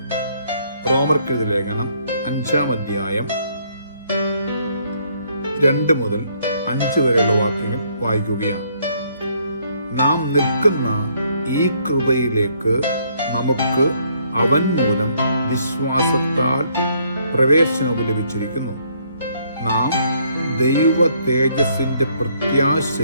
റോമർക്കെഴുതിയ ലേഖനം 5-ാം അധ്യായം 2 മുതൽ 5 വരെയുള്ള വാക്യങ്ങൾ വായിക്കുകയാണ്. നാം നിൽക്കുന്ന ഈ കൃപയിലേക്ക് നമുക്ക് അവൻ മൂലം വിശ്വാസത്താൽ പ്രവേശനവും ലഭിച്ചിരിക്കുന്നു. നാം ദൈവ തേജസ്സിന്റെ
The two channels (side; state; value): both; inverted; correlation -0.68